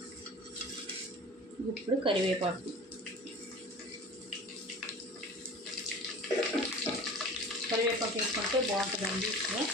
ఇప్పుడు కరివేపాకు. కరివేపాకు వేసుకుంటే బాగుంటుందండి,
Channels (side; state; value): both; normal; correlation 0.39